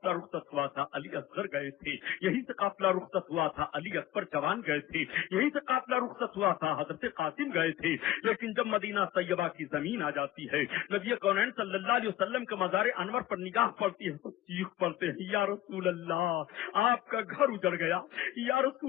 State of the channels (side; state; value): right; quieter; 13.8 dB